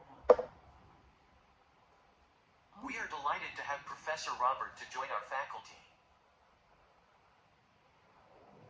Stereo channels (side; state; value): both; identical; correlation 1.00